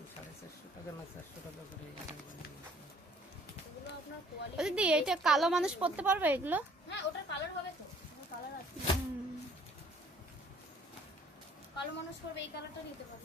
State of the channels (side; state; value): both; normal; correlation 0.58